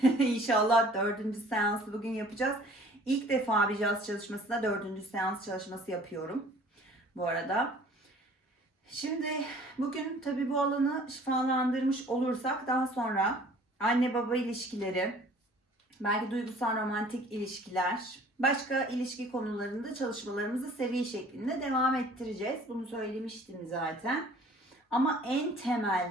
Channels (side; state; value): both; normal; correlation 0.51